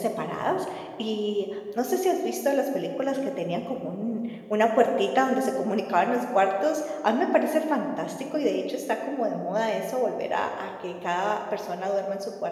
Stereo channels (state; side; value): identical; both; correlation 1.00